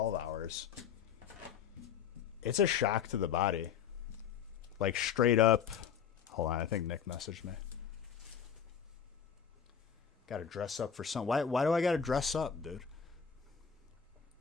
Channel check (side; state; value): right; quieter; 7.7 dB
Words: hours, it's a shock to the body. Like, straight up. Hold on, I think Nick messaged me. Gotta dress up for some. Why do I gotta dress up, dude?